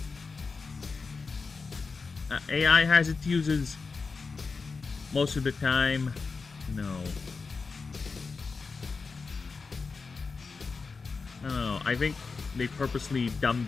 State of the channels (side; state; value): right; quieter; 4.6 dB